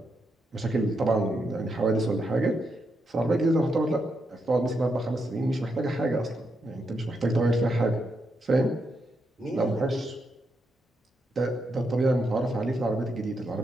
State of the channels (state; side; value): normal; both; correlation 0.82